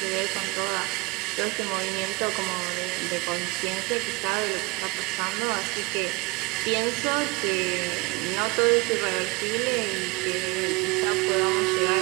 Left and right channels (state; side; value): quieter; left; 25.5 dB